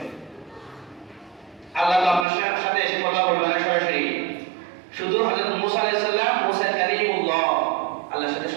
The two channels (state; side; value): drops out; left; at 2.2 s